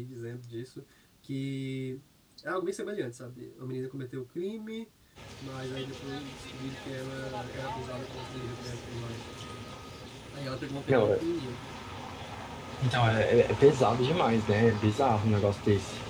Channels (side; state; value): both; identical; correlation 1.00